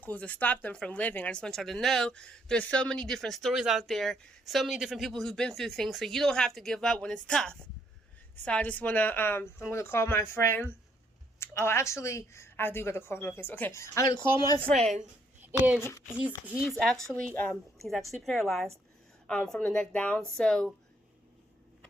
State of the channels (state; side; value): normal; both; correlation 0.71